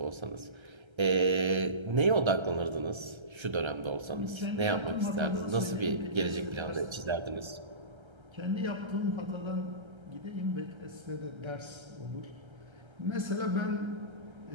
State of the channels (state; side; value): late; left; 1.3 ms